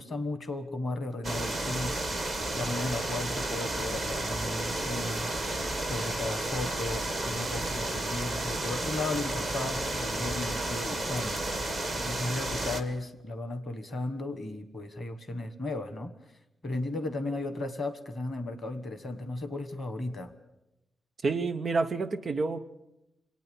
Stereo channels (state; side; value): normal; both; correlation 0.83